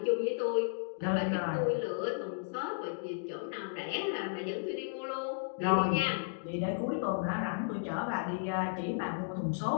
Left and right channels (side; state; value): right; silent; digital silence